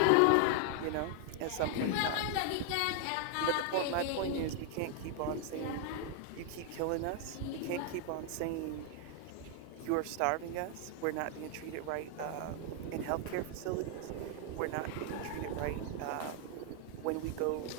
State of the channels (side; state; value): both; different; correlation 0.00